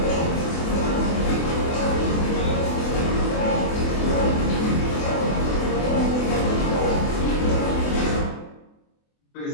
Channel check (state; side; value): late; right; 24 ms